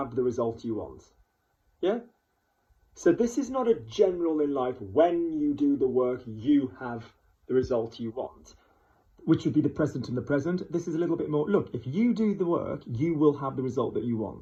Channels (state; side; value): identical; both; correlation 1.00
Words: the result you want. Yeah? So this is not a general in life, when you do the work, you have the result you want, which would be the present and the present. This is a little bit more, look, if you do the work, you will have the result that you